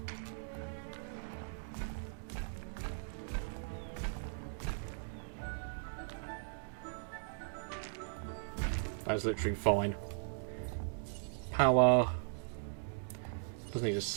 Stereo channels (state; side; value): silent; left; digital silence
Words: That's literally fine. Power. Doesn't need a